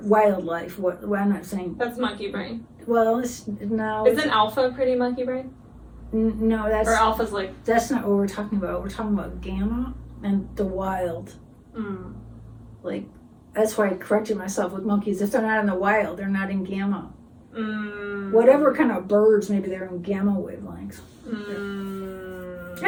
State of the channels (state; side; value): identical; both; correlation 1.00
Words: wildlife. I'm not saying that's monkey brain. Well, Isn't alpha pretty monkey brain? No, or alpha's like. That's not what we're talking about. We're talking about gamma and the wild. Like, that's why I corrected myself with monkeys. If they're not in the wild, they're not in gamma. Whatever kind of birds, maybe they're in gamma wavelengths.